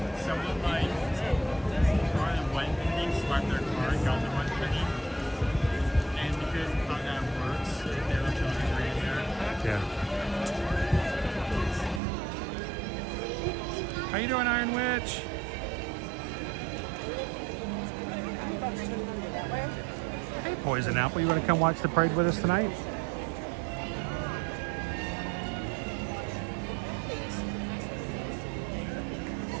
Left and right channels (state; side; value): drops out; left; at 12.0 s